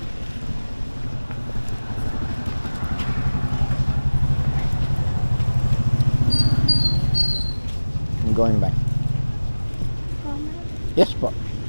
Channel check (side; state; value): both; inverted; correlation -1.00